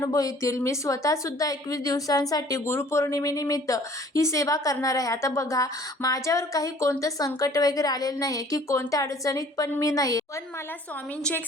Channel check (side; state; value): both; normal; correlation 0.53